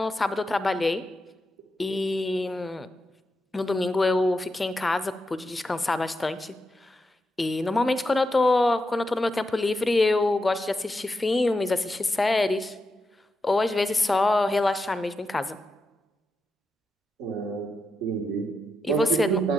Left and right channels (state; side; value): normal; both; correlation 0.87